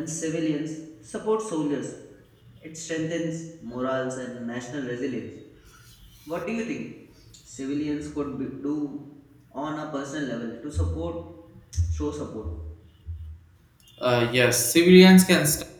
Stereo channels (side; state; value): both; identical; correlation 1.00